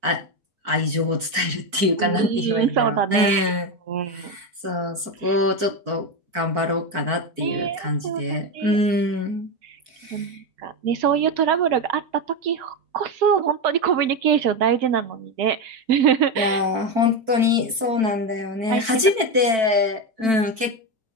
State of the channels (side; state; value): left; late; 4.5 ms